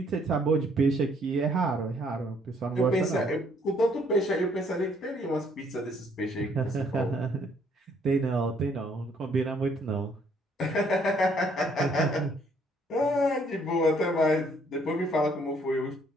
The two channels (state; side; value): normal; both; correlation 0.65